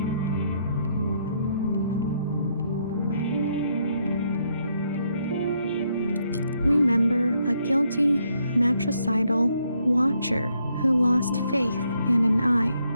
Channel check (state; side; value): inverted; both; correlation -0.74